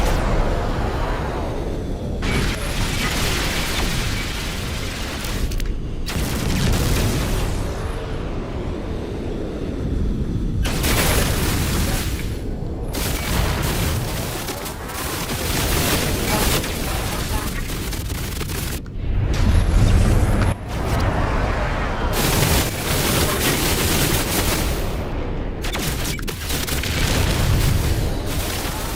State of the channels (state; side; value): identical; both; correlation 1.00